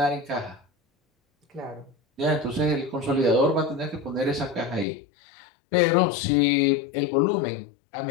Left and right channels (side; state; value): right; drops out; at 4.9 s